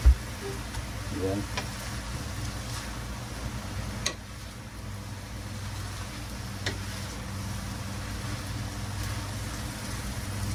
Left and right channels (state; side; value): identical; both; correlation 1.00